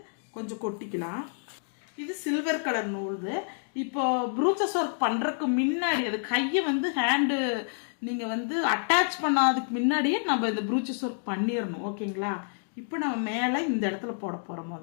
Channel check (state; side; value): silent; right; digital silence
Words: கொஞ்சம் கொட்டிக்கலாம். இது சில்வர் கலர் நூல். இப்போ ப்ரூச்சஸ் ஒர்க் பண்றதுக்கு முன்னாடி அது கையை வந்து ஹேண்டு நீங்க வந்து அட்டாச் பண்ணாததுக்கு முன்னாடியே நம்ம இந்த ப்ரூச்சஸ் ஒர்க் பண்ணிடணும். ஓகேங்களா, இப்போ நம்ம மேலே இந்த இடத்துல போட போறோம்.